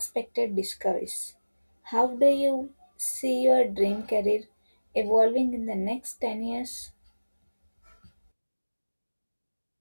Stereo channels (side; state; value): both; inverted; correlation -1.00